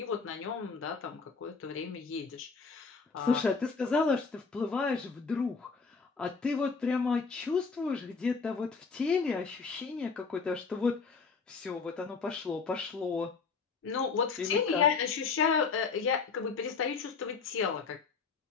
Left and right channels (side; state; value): right; quieter; 4.9 dB